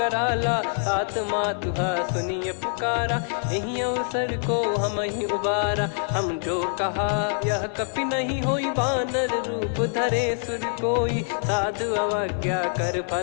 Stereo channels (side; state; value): right; silent; 57 dB below the other